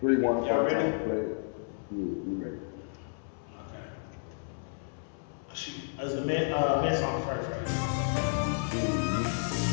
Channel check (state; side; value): silent; right; 57 dB below the other